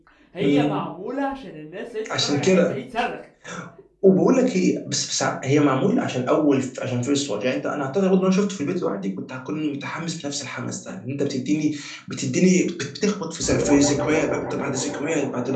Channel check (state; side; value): identical; both; correlation 1.00